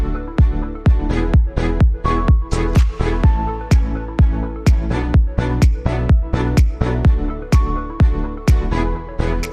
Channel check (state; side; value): identical; both; correlation 1.00